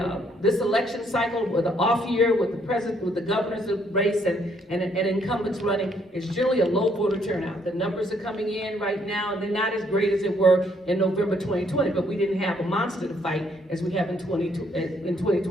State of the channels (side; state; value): both; normal; correlation 0.69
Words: election cycle, with the off year, with the president, with the governor's race, and incumbents running, is generally a low voter turnout. The numbers are coming in right now, and they're not as great as they were in November 2020. But we didn't have a monster to fight as we have in